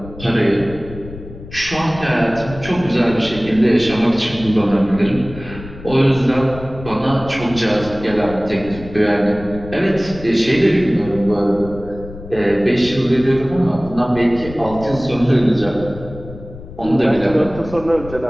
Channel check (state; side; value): noise; left; rumble, 14 dB below the sound